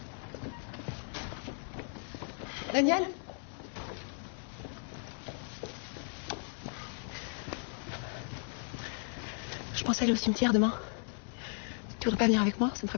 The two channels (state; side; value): silent; right; 54 dB below the other